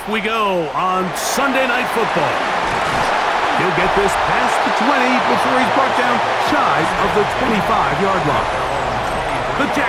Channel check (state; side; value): identical; both; correlation 1.00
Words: we go on Sunday Night Football. He'll get this past the 20 before he's brought down shy of the 25-yard line. The